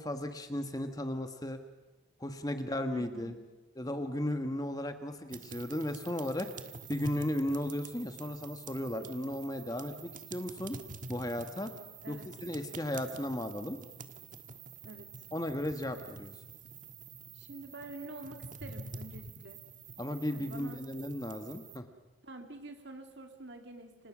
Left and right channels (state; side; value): normal; both; correlation 0.76